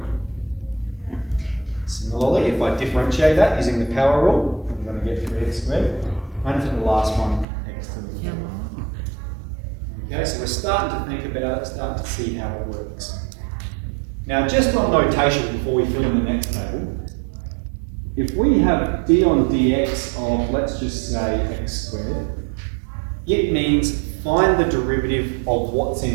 Similarly, if I differentiate that using the power rule, I'm going to get 3x squared. And for the last one, x to the power. Okay, so we're starting to think about it, starting to see how it works. Now, just on notation before we fill in the next table, if we have d on dx of, let's just say, x squared, it means find the derivative of what's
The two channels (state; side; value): drops out; left; at 7.5 s